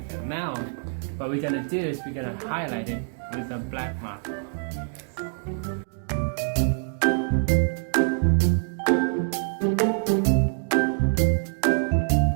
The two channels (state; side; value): silent; left; 61 dB below the other